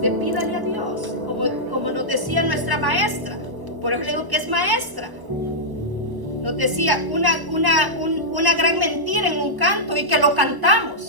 pídale a Dios, como nos decía nuestra maestra. Por eso le digo que es maestra. Nos decía una gran mentira en un canto, y que lo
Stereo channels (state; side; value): late; left; 1.1 ms